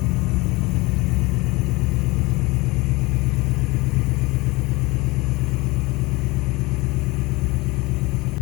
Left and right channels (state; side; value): quieter; right; 23.0 dB